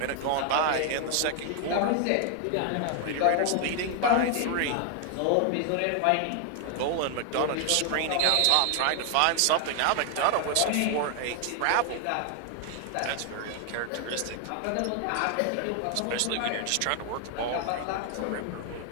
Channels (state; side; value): different; both; correlation 0.00